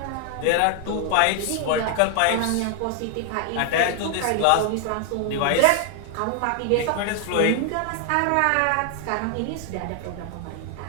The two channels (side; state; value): both; different; correlation 0.00